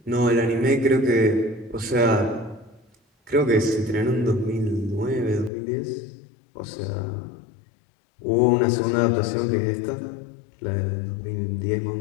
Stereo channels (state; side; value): drops out; right; at 5.5 s